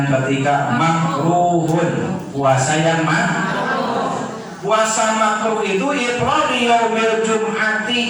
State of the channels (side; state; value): both; identical; correlation 1.00